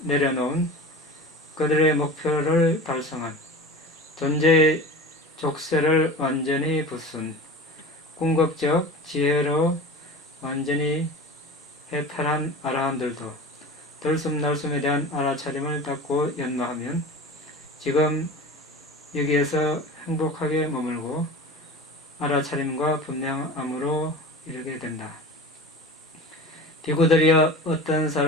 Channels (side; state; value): both; normal; correlation 0.34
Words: 내려놓은 그들의 목표를 달성한 존재의 족쇄를 완전히 부순 궁극적 지혜로 완전히 해탈한 아라한들도 들숨날숨에 대한 알아차림을 닫고 연마하면 지금 여기에서 행복하게 머물고 알아차림과 분명함으로 이르게 된다. 비구들이여 어떤